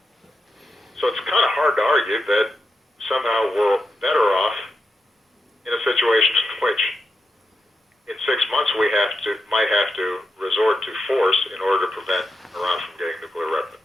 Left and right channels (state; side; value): normal; both; correlation 0.86